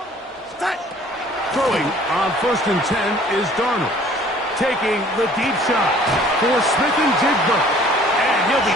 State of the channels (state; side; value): normal; both; correlation 0.54